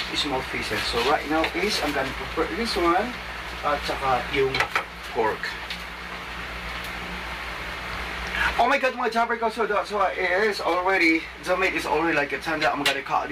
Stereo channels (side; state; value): both; identical; correlation 1.00